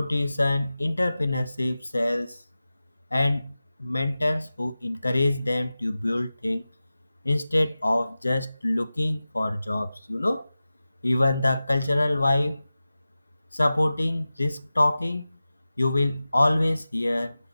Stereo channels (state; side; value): inverted; both; correlation -0.95